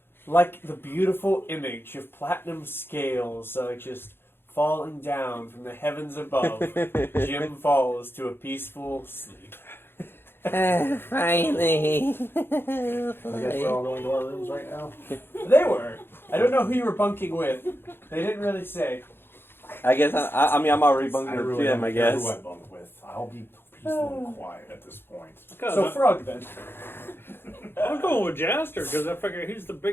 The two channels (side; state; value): right; late; 0.11 ms